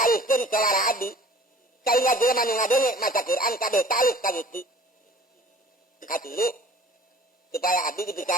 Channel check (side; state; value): both; normal; correlation 0.49